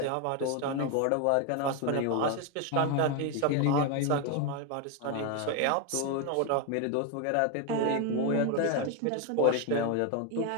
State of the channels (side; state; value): both; different; correlation 0.01